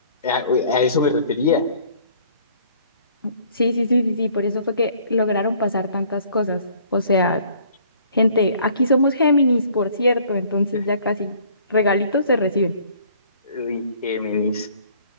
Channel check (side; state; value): both; inverted; correlation -0.56